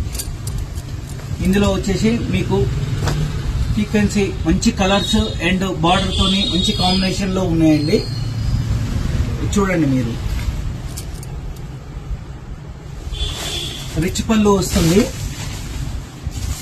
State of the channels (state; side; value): identical; both; correlation 1.00